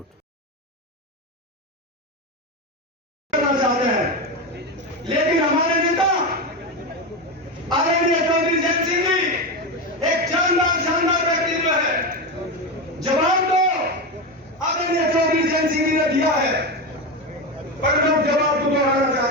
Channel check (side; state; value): both; normal; correlation 0.16